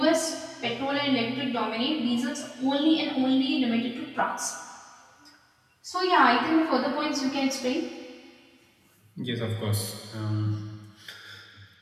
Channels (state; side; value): identical; both; correlation 1.00